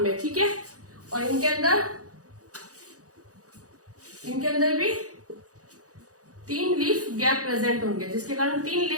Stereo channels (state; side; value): late; left; 0.67 ms